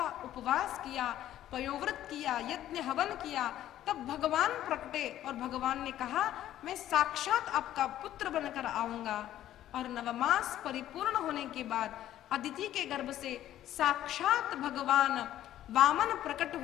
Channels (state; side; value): quieter; right; 12.6 dB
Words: उपवास किया, पयोव्रत किया, यज्ञ हवन किया। तब भगवान प्रकटे और भगवान ने कहा, मैं साक्षात आपका पुत्र बनकर आऊंगा। और नवमास परिपूर्ण होने के बाद अदिति के गर्भ से साक्षात भगवान वामन प्रकट